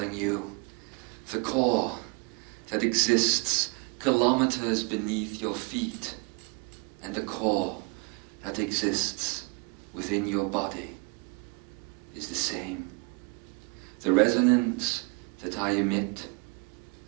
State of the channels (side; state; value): left; quieter; 30.4 dB